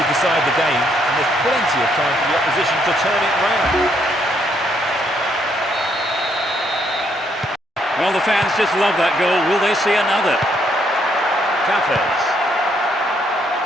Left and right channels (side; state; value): both; normal; correlation 0.72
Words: decide the game, and there's plenty of time for the opposition to turn it round. Well, the fans just love that goal. Will they see another? Cafes.